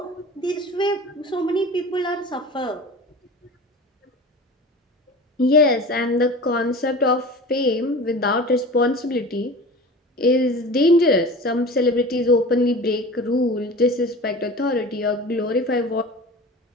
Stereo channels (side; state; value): both; normal; correlation 0.36